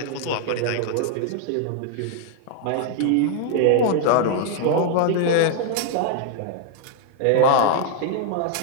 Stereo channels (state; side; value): different; both; correlation 0.00